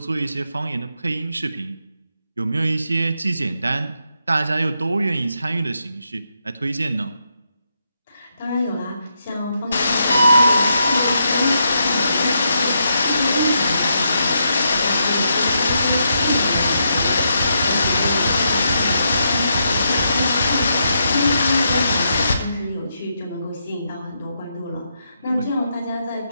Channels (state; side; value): inverted; both; correlation -0.81